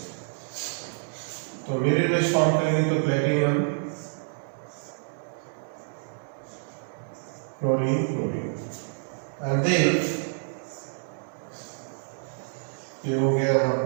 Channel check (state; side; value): silent; left; digital silence